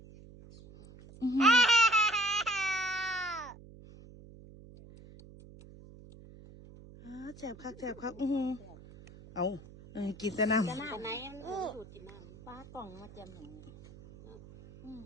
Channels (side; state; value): right; noise; hum, 19 dB below the sound